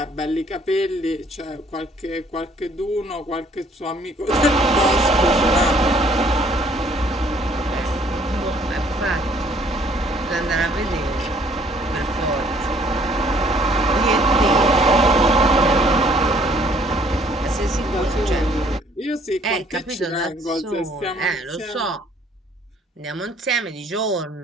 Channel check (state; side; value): normal; both; correlation 0.61